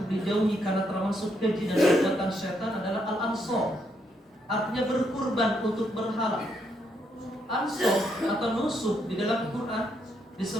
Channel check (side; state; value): both; normal; correlation 0.76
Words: dijauhi karena termasuk keji dan perbuatan setan adalah al-ansor. Artinya berkurban untuk berhala. Ansor atau nusuk di dalam Quran